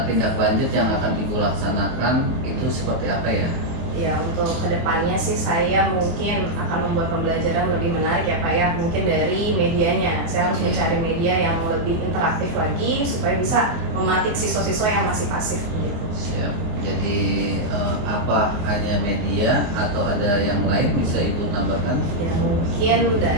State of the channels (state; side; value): late; left; 24 ms